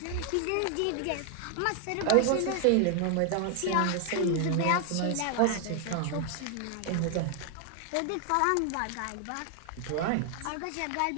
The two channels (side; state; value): both; different; correlation 0.00